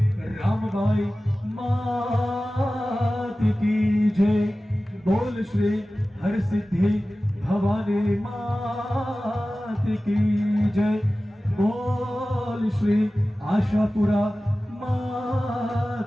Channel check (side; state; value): both; normal; correlation 0.96